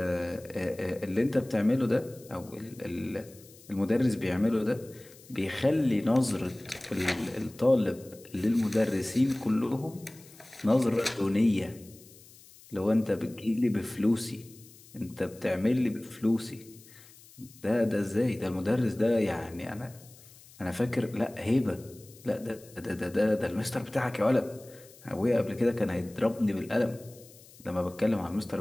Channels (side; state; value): left; noise; hiss, 23 dB below the sound